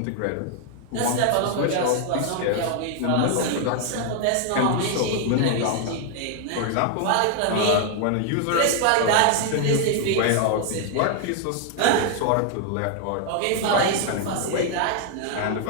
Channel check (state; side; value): different; both; correlation 0.00